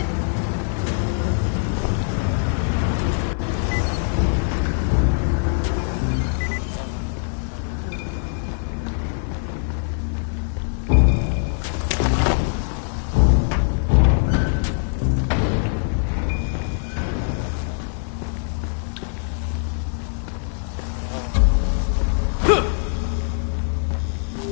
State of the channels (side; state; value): right; silent; 64 dB below the other